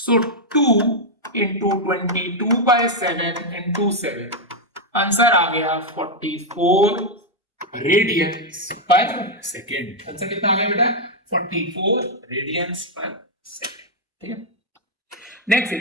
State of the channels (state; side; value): normal; both; correlation -0.01